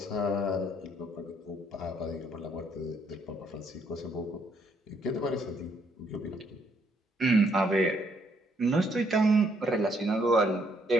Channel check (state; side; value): normal; both; correlation 0.70